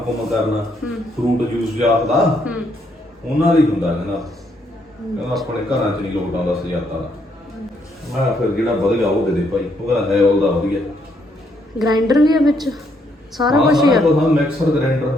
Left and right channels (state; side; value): normal; both; correlation 0.73